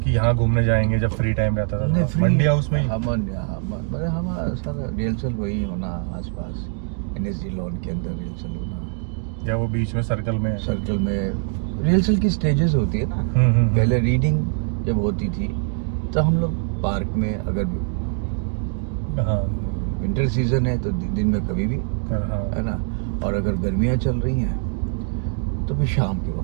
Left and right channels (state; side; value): silent; left; 56 dB below the other